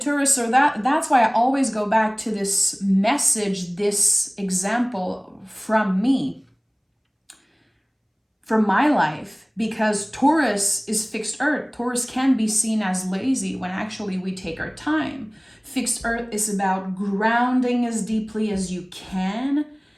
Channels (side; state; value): both; identical; correlation 1.00